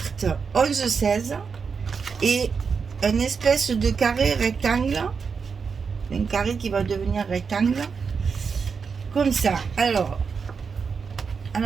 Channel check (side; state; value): left; quieter; 5.6 dB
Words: 11-16 et une espèce de carré rectangle, un carré qui va devenir rectangle comme ça. Alors à